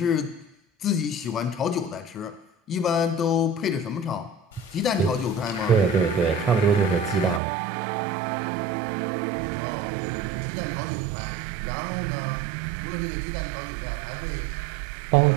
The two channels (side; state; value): left; drops out; at 7.4 s